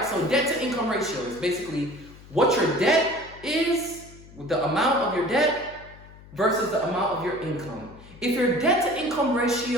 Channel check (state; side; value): noise; left; hum, 20 dB below the sound